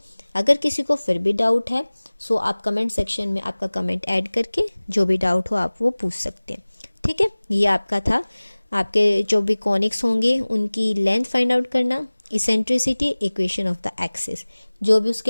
अगर किसी को फिर भी डाउट है सो आप कमेंट सेक्शन में आपका कमेंट ऐड करके जो भी डाउट हो आप वो पूछ सकते हैं। ठीक है, ये आपका था आपके जो भी कॉनिक्स होंगे उनकी लेंथ फाइंड आउट करना, eccentricity, equation of the axis, जो भी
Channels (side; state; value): both; inverted; correlation -1.00